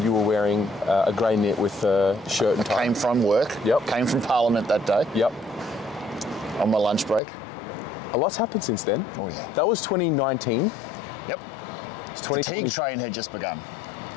you were wearing a grey knit with a shirt and tie. Came from work. Yep. Came from Parliament that day. Yep. On my lunch break. A lot's happened since then. Oh yeah. That was 2019. Yep. It's The fatigue train had just begun.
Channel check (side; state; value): right; drops out; at 7.2 s